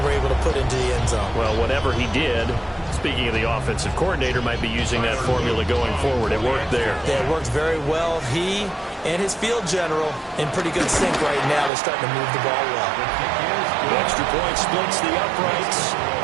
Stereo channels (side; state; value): left; drops out; at 11.7 s